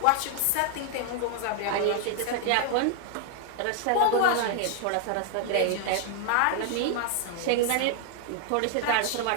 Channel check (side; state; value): both; different; correlation 0.00